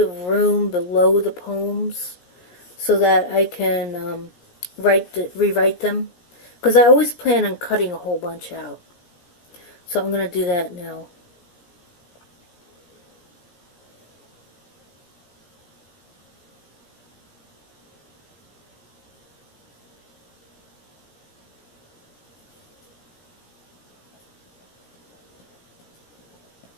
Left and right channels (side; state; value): right; late; 17 ms